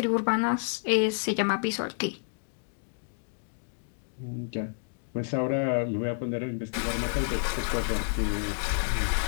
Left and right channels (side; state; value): right; silent; digital silence